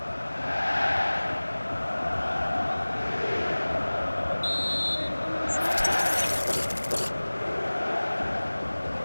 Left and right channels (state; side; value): inverted; both; correlation -1.00